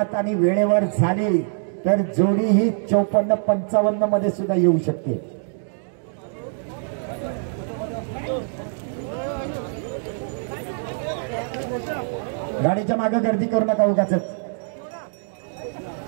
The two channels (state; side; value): silent; left; digital silence